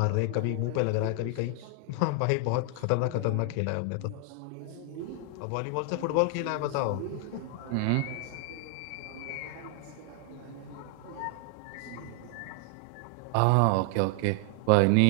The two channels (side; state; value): both; different; correlation 0.00